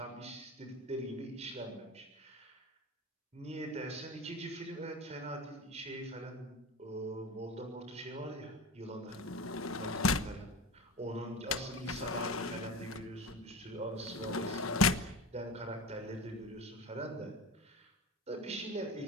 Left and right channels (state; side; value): normal; both; correlation 0.29